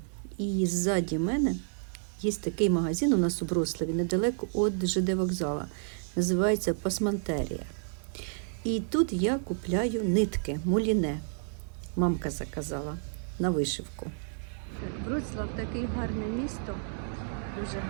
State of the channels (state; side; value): silent; left; digital silence